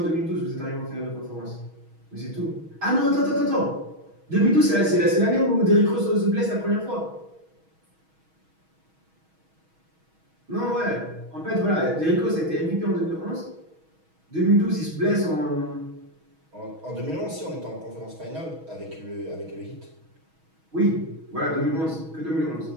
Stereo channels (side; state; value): left; late; 6.3 ms